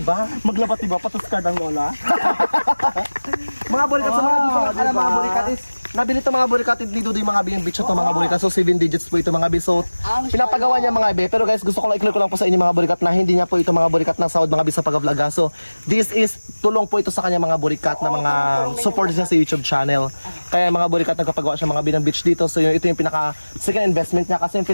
Maglabatiba, patos card ang lola. Mga burikat sa mga dito, alam mga burikat is, nabili ito mga burikat dito yung mga B, beach ito mga burikat. So 7 digits po ito mga B. So pinapagawa niya mga B. Pero guys, gusto ko lang i-clear ko lang po sa inyo mga burikat na hindi niya po ito mga burikat na sahod mga B sa pag-vlog. So this is tulong po ito sa kanya mga burikat na mga support niya sa YouTube channel. Kaya mga burikat nagkapagawa siya mga B ng beach dito. So ito yung pinaka second investment niya kasi yung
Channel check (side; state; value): both; inverted; correlation -1.00